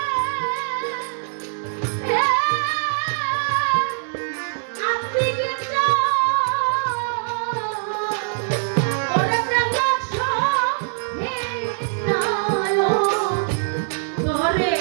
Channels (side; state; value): left; silent; digital silence